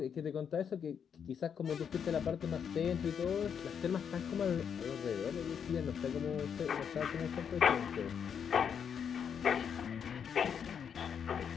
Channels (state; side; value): quieter; right; 7.5 dB